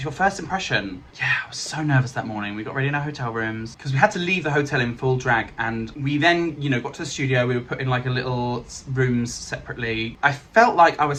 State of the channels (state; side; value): identical; both; correlation 1.00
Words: your first impression. Yeah, I was so nervous that morning. We got ready in our hotel rooms because we had to leave the hotel in full drag, and we then, got to the studio. We were put in like a little rooms separately. I felt like I was